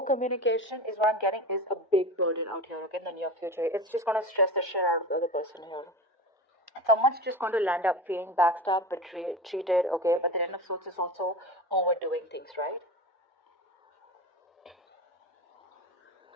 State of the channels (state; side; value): normal; both; correlation 0.28